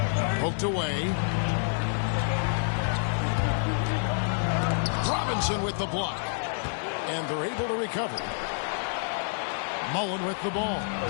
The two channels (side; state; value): right; silent; digital silence